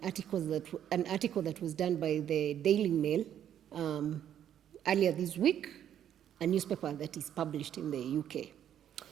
article that was done by the Daily Mail earlier this week, a newspaper that is published in the UK.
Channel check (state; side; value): quieter; left; 10.1 dB